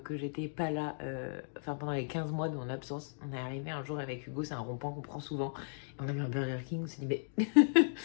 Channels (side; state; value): right; silent; digital silence